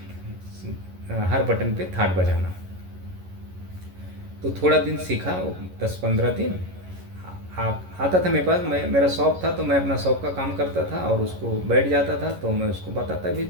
हर बटन पे थाट बजाना, तो थोड़ा दिन सीखा, 10 15 दिन आता था मेरे पास। मेरा शौक था, तो मैं अपना शौक का काम करता था और उसको बैठ जाता था, तो मैं उसको बताता भी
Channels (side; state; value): left; late; 11 ms